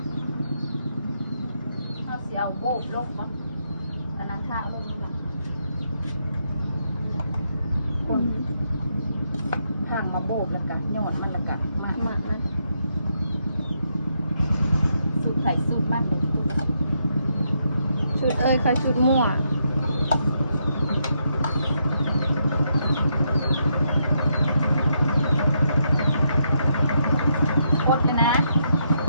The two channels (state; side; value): inverted; both; correlation -0.78